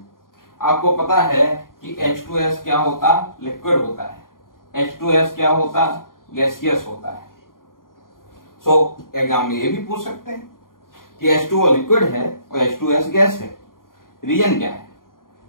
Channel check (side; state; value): right; late; 0.91 ms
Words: आपको पता है कि H2S क्या होता, लिक्विड होता है, H2S क्या होता, गैसियस होता है। सो एग्जाम में ये भी पूछ सकते हैं कि H2O लिक्विड है और H2S गैस है, रीजन क्या है?